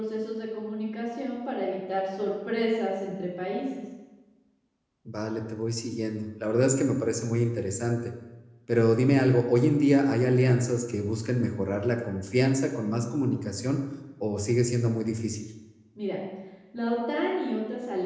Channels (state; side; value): identical; both; correlation 1.00